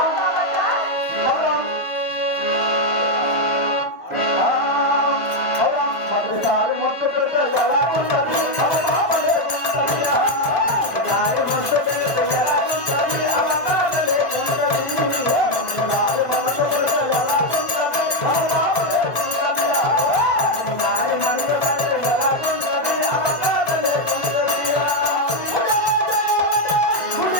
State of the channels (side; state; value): right; late; 1.5 ms